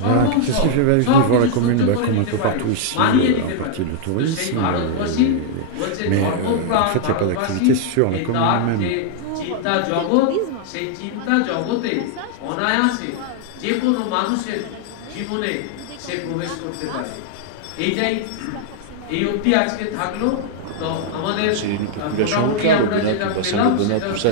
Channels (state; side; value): different; both; correlation -0.01